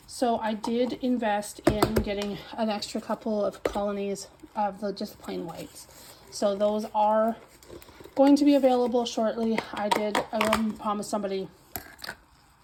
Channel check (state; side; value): identical; both; correlation 1.00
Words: So I did invest in getting an extra couple of colonies of the just plain whites. So those are going to be available shortly. I did promise somebody